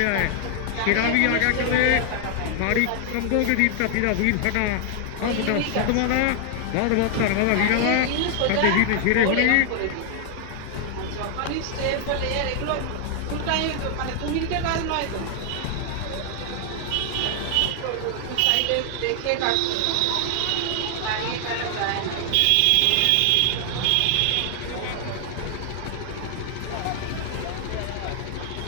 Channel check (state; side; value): different; both; correlation 0.00